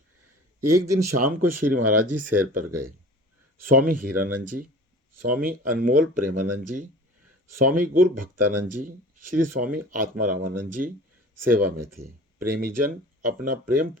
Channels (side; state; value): both; normal; correlation 0.41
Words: एक दिन शाम को श्री महाराज जी सैर पर गए। स्वामी हीरानंद जी, स्वामी अनमोल प्रेमानंद जी, स्वामी गुरु भक्तानंद जी, श्री स्वामी आत्मारामानंद जी सेवा में थे। प्रेमीजन अपना प्रेम